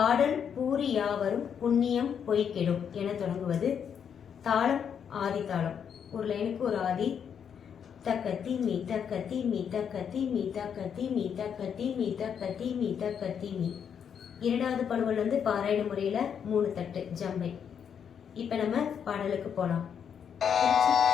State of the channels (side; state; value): right; quieter; 7.7 dB